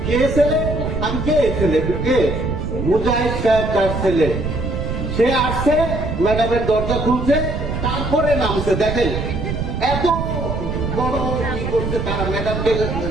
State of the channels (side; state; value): right; noise; rumble, 4 dB below the sound